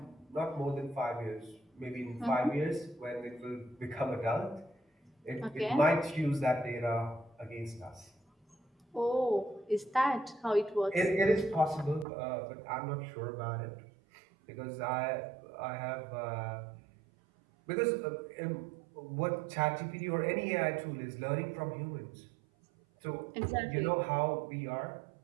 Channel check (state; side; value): drops out; left; at 12.1 s